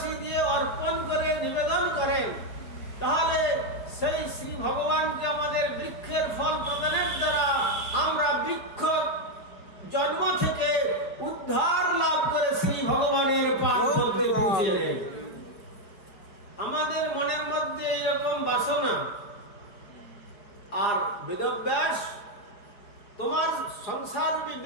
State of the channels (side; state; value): right; late; 4.8 ms